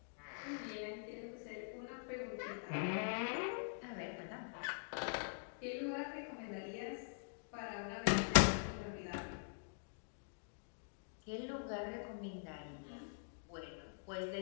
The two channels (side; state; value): right; silent; digital silence